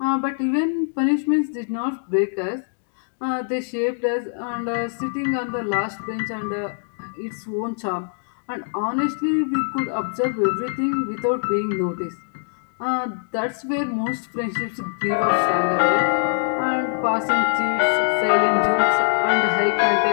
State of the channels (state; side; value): silent; right; digital silence